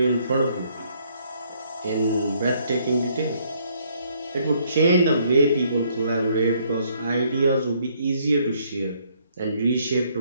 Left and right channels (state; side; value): inverted; both; correlation -0.67